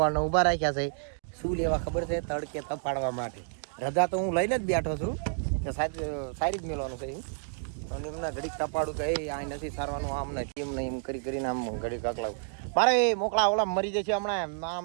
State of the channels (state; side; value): silent; left; digital silence